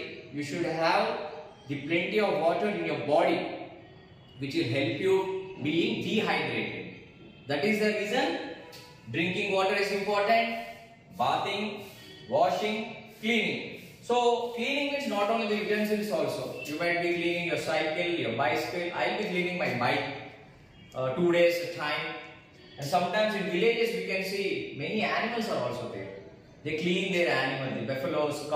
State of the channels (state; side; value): identical; both; correlation 1.00